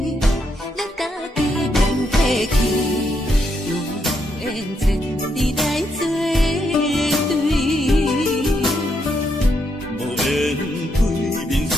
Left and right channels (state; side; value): normal; both; correlation 0.78